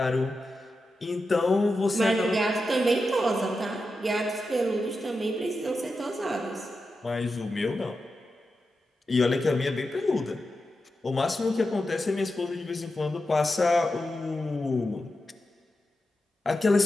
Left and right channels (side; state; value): both; normal; correlation 0.90